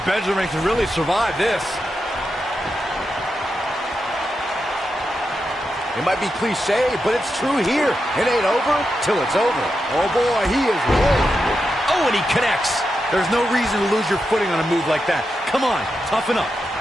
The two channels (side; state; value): both; normal; correlation 0.87